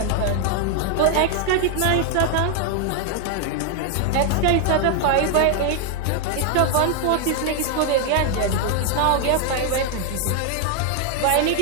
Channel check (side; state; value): both; different; correlation 0.00